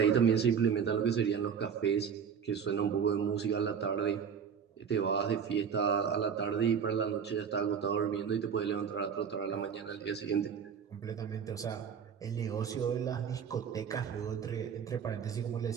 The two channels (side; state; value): left; quieter; 7.2 dB